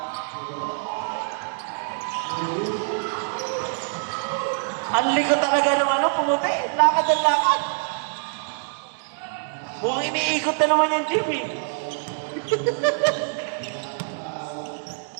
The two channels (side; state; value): left; silent; 62 dB below the other